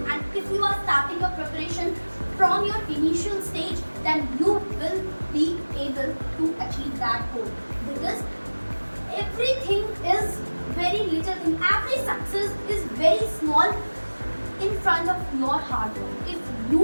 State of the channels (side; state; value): both; inverted; correlation -1.00